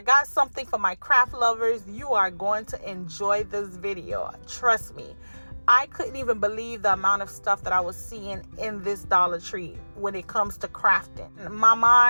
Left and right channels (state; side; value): inverted; both; correlation -1.00